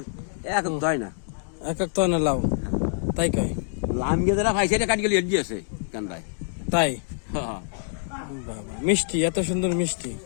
এক হয় না এক তো না লাউ তাই কয় লাম গিয়ে যারা ভাই সেটা কাটি গেলে এড দিয়েছে কান্দায় তাই বাবা মিষ্টি এত সুন্দর মিষ্টি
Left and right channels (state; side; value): silent; right; digital silence